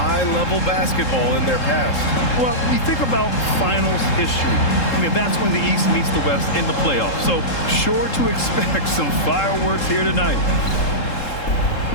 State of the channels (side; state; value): right; late; 3.7 ms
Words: basketball in their past. Well, you think about finals history. I mean, that's when the East meets the West in the playoffs. So sure to expect some fireworks here tonight.